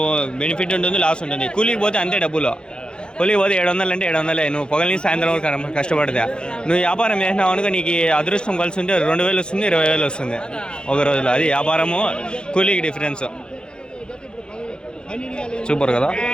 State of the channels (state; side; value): late; right; 0.049 ms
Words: బెనిఫిట్ ఉంటుంది, లాస్ ఉంటుంది. కూలీకి పోతే అంతే డబ్బులు. కూలీకి పోతే 700 అంటే 700. నువ్వు పొగలని సాయంత్రం వరకు కష్టపడితే నువ్వు వ్యాపారం చేసినావు అనుకో, నీకు అదృష్టం కలిసి ఉంటే 2,000 వస్తుంది, 20,000 వస్తుంది ఒక రోజులో. అది వ్యాపారము కూలీకి డిఫరెన్స్. సూపర్ కదా